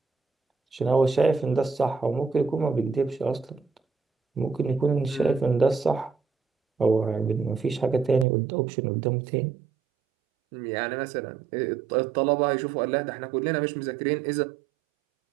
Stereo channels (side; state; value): left; drops out; at 8.2 s